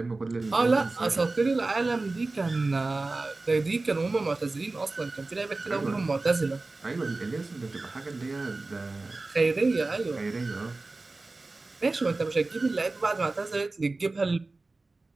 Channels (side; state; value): left; quieter; 3.3 dB